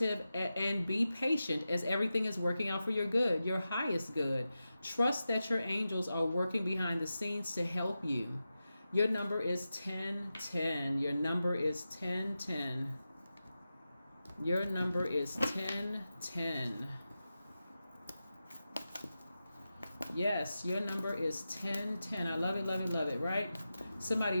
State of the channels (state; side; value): inverted; both; correlation -0.92